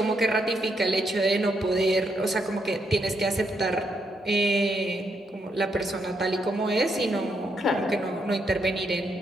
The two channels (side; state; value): both; normal; correlation 0.78